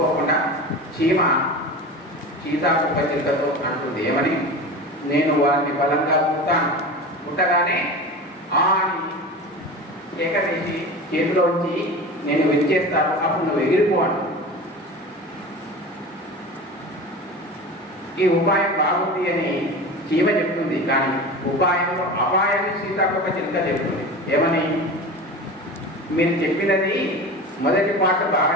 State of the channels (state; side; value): normal; both; correlation 0.31